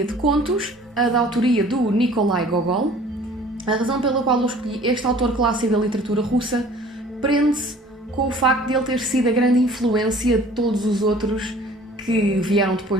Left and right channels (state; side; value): normal; both; correlation 0.50